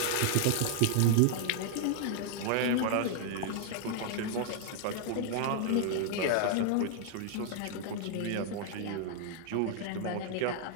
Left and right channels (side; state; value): both; different; correlation 0.00